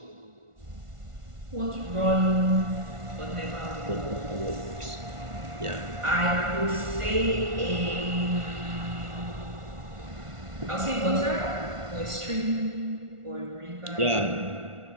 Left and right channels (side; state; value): left; late; 1.4 ms